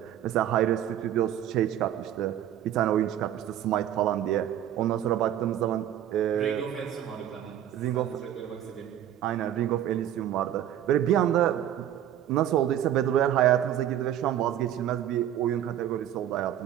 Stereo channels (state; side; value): quieter; left; 11.1 dB